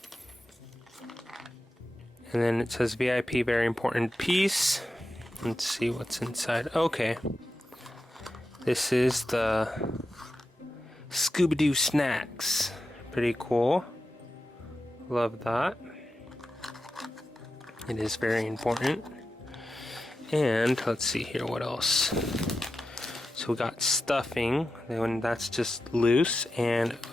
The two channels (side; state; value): both; normal; correlation 0.91